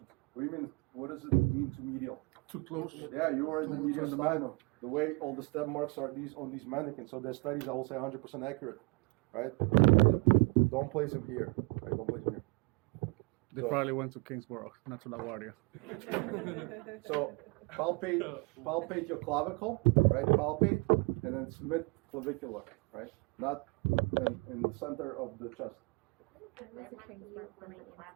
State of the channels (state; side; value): quieter; left; 29.6 dB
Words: What do you mean? What does it mean too medial? Too close. Yeah, you are in the mediastinal. The way all the step marks are on these mannequins. So their studies, I will say, 100% accurate, right? Don't place him here, right? Don't place him here. They probably went to Kingsborough, not to LaGuardia. So palpate your clavicle, right? Palpate, and then it's mid-clavicular, right? Not in the center of the chest. That might be used when the